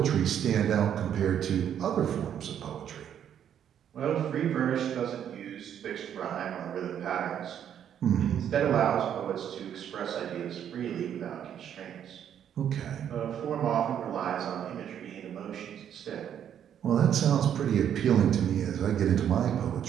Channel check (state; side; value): quieter; left; 9.4 dB